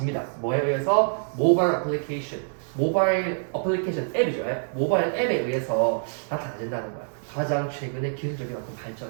뭐에 의해서? 모바일 어플리케이션 앱이죠. 모바일 앱에 의해서 나타나진다는 거야. 가장 최근의 기술적인 어떤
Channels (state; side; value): silent; left; digital silence